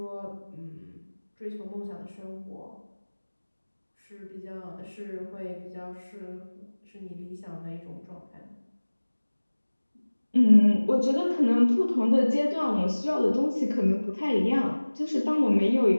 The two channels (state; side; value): inverted; both; correlation -1.00